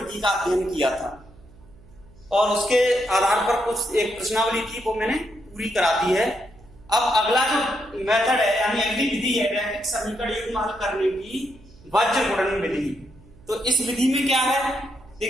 का अध्ययन किया था और उसके आधार पर कुछ एक प्रश्नावली थी वो मैंने पूरी करा दी है। अब अगला जो मेथड है यानी अगली विधि है रैखिक समीकरण हल करने की वज्र गुणन विधि। तो इस विधि में क्या है,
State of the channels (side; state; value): right; noise; hum, 24 dB below the sound